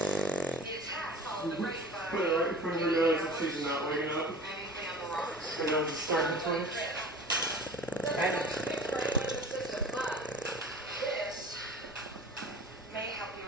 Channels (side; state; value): both; normal; correlation 0.41